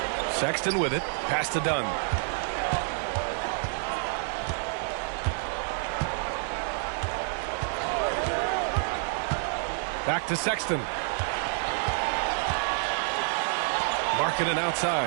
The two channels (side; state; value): left; silent; 59 dB below the other